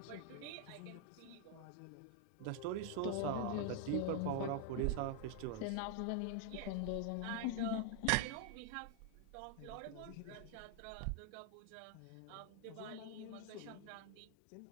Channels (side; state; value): both; different; correlation 0.00